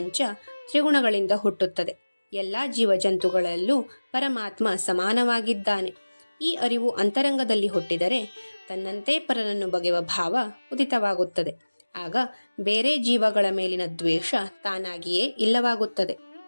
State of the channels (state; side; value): inverted; both; correlation -1.00